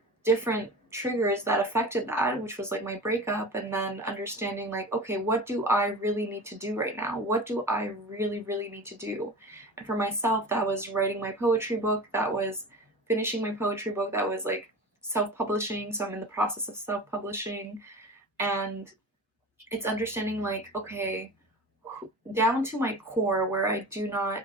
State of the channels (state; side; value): normal; both; correlation 0.34